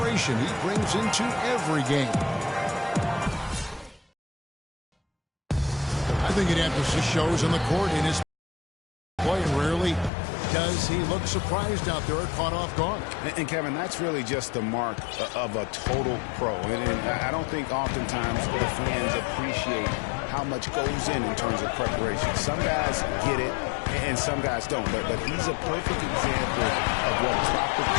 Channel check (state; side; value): drops out; right; at 10.1 s